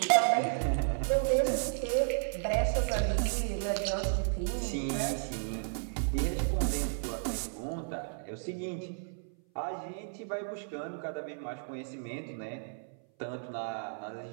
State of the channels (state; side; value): silent; left; 56 dB below the other